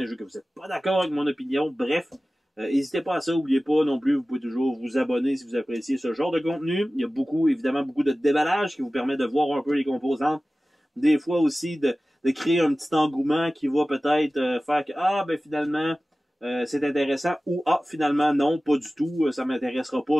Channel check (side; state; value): both; normal; correlation 0.96